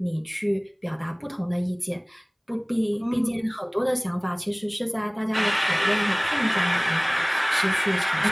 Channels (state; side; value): identical; both; correlation 1.00